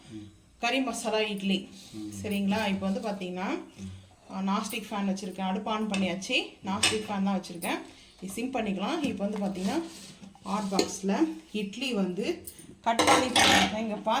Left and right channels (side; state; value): both; identical; correlation 1.00